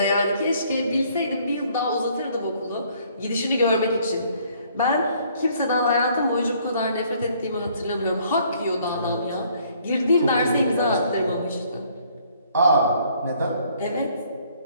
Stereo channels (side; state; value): both; inverted; correlation -0.62